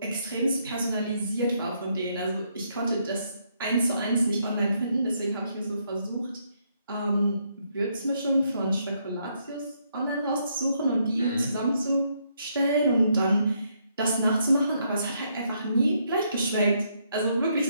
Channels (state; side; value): inverted; both; correlation -0.74